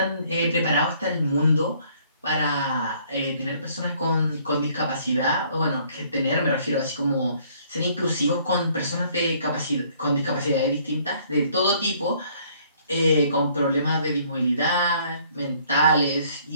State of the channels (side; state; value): both; inverted; correlation -0.62